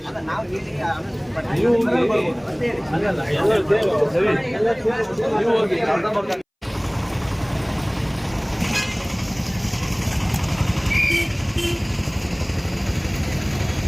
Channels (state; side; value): identical; both; correlation 1.00